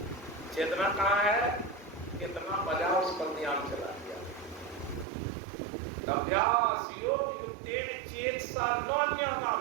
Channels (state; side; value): drops out; left; at 5.1 s